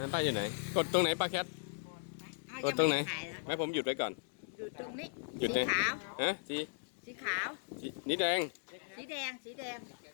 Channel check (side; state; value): right; silent; digital silence